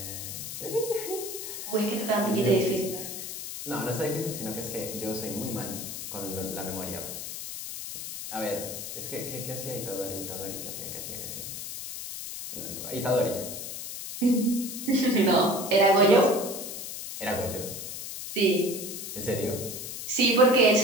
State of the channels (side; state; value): left; noise; hiss, 7 dB below the sound